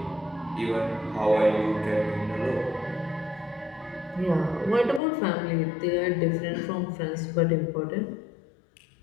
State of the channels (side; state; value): right; drops out; at 5.0 s